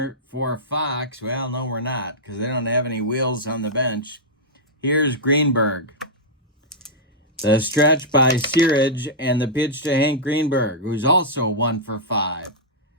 for Fox. Well, no, we're not, because they don't have any wheels on the bench. Here's Greenberg. The stretch by Searage and the pitch to Hank Greenberg, who's also 1 for 5.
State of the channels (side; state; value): both; normal; correlation -0.09